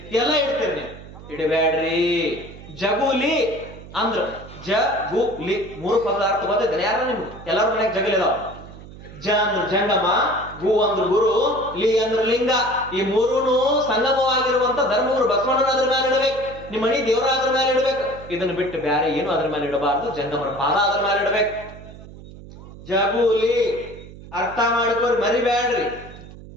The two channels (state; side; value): noise; right; hum, 16 dB below the sound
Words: ಎಲ್ಲ ಇಡ್ತೇರಿ. ನೀವು ಇಡಬ್ಯಾಡ್ರಿ. ಜಗುಲಿ ಅಂದ್ರ ಜಗುಲಿ 3 ಪದದ ಅರ್ಥ ಗೊತ್ತೈತೆ ಯಾರ ನಿಮ್ಗೆ? ಎಲ್ಲಾರ ಮನ್ಯಾಗ ಜಗಲಿ ಅದಾವ. ಜ ಅಂದ್ರ ಜಂಗಮ, ಗು ಅಂದ್ರ ಗುರು, ಲಿ ಅಂದ್ರ ಲಿಂಗ. ಈ ಮೂರೂನು ಸಂಗಮವಾಗಿರುವಂತ ಧರ್ಮಗುರು ಬಸವಣ್ಣನ ಅದ್ರ ಮೇಲೆ ಇಡಬೇಕು. ನಿಮ್ಮ ಮನಿ ದೇವರ ಅದ್ರ ಮೇಲೆ ಇಡಬೇಕು. ಇದನ್ನ ಬಿಟ್ಟು ಬ್ಯಾರೆ ಏನು ಅದ್ರ ಮೇಲೆ ಇಡಬಾರ್ದು. ಜಂಗಮರ ಪಾದ ಅದ್ರ ಮೇಲೆ ಇಡಬೇಕು. ಜಗುಲಿ ಅರ್ಥ ಮಾಡಿಕೋರಿ, ಮರಿಬ್ಯಾಡ್ರಿ.